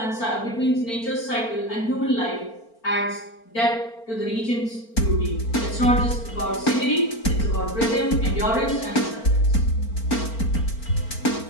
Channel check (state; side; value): late; right; 4.4 ms